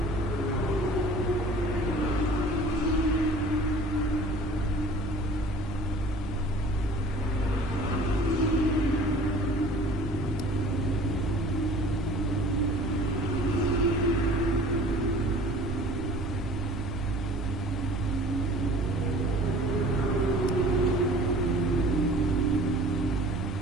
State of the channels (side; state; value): both; normal; correlation 0.47